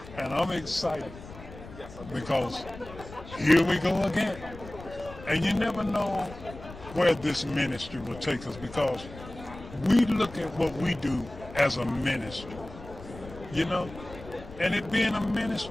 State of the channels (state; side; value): noise; left; rumble, 16 dB below the sound